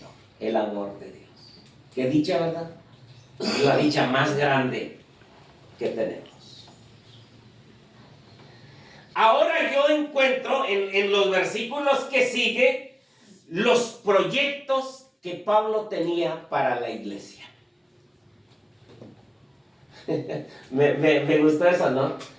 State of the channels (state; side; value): identical; both; correlation 1.00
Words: El amor de Dios. Qué dicha, ¿verdad? Es la dicha más grande que tenemos. Ahora yo encuentro en los versículos que sigue los proyectos que Pablo tenía para la iglesia. me gustó eso, ¿no?